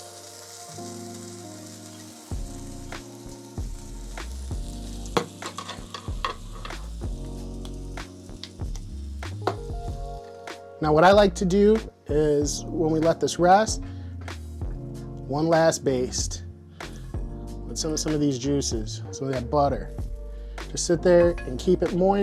Now what I like to do is when we let this rest, one last baste with some of these juices, some of that butter. Just sit there and keep it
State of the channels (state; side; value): identical; both; correlation 1.00